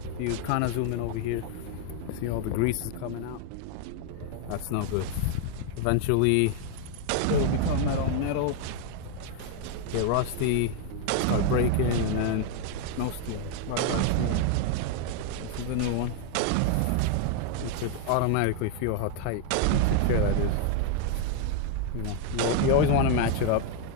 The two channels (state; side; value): different; both; correlation 0.00